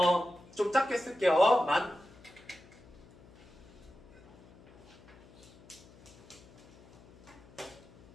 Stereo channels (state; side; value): noise; left; hum, 23 dB below the sound